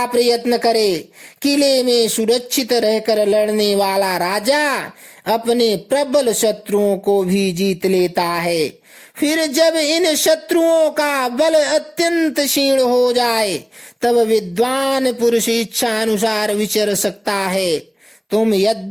प्रयत्न करे। किले में सुरक्षित रहकर लड़ने वाला राजा अपने प्रबल शत्रुओं को भी जीत लेता है। फिर जब इन शत्रुओं का बल अत्यंत क्षीण हो जाए, तब विद्वान पुरुष इच्छा अनुसार विचर सकता है। तुम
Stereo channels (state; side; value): identical; both; correlation 1.00